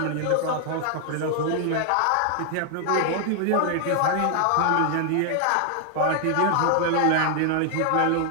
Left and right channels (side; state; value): both; different; correlation 0.00